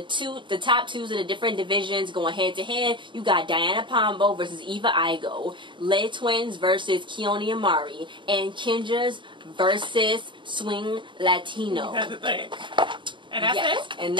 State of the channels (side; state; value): left; late; 0.23 ms